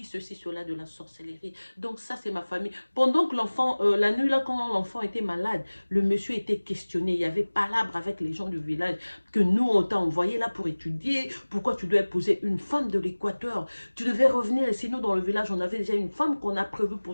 ceci, cela de la sorcellerie. Donc ça, c'est ma famille. Pendant que l'enfant, la nuit là, quand l'enfant était malade, le monsieur était questionné. Il y avait palabre avec les gens du village que nous, on t'a envoyé là pour étudier. Pourquoi tu dois épouser une femme de l'Équateur? Tu devais revenir. Et sinon, dans le village, on avait déjà une femme qu'on a prévue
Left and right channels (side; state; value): both; inverted; correlation -1.00